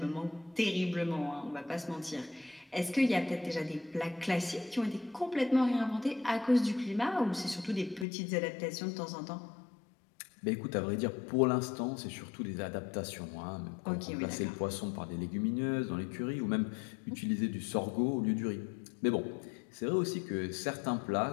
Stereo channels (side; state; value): right; drops out; at 8.1 s